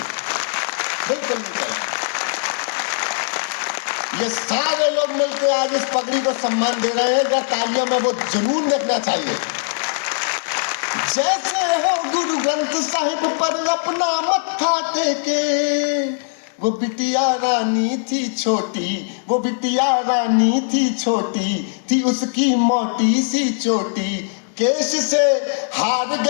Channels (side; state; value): right; silent; 66 dB below the other